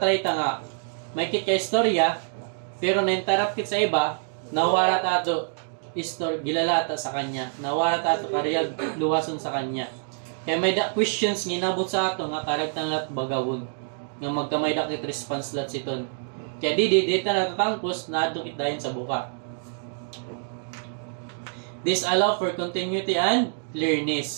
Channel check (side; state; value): left; silent; digital silence